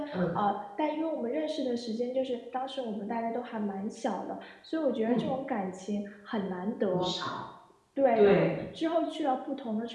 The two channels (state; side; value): identical; both; correlation 1.00